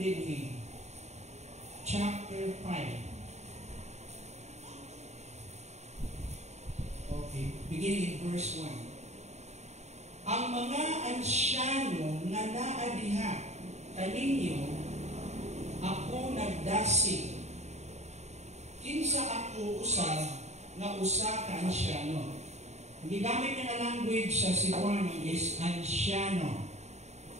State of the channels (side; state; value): left; late; 0.32 ms